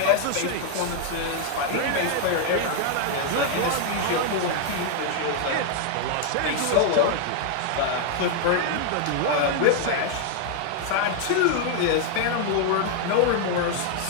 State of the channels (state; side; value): different; both; correlation 0.00